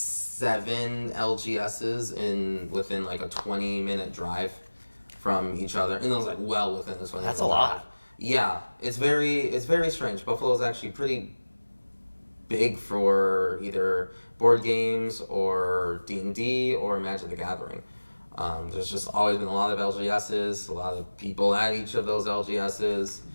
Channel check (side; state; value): both; inverted; correlation -1.00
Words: LGSs within like a 20-minute drive from each other, and it was like well within this one. That's a lot. Yeah, it's very strange. Buffalo is actually pretty big for either board games or D&D or Magic the Gathering. There's just always been a lot of LGSs, a lot of people at each of those LGSs.